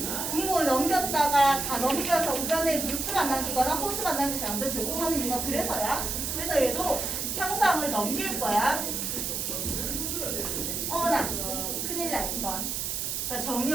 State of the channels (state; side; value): noise; right; hiss, 2 dB below the sound